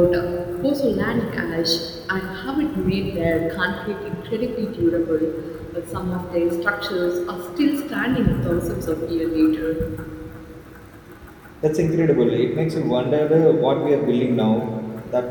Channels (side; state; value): both; identical; correlation 1.00